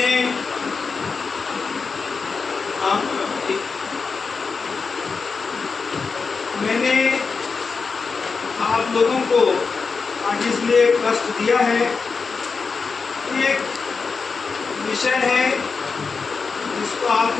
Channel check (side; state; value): right; quieter; 4.9 dB